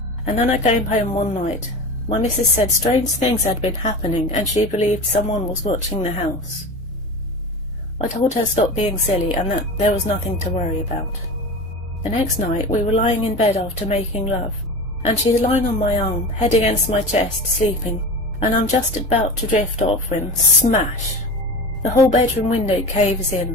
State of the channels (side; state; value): both; normal; correlation 0.30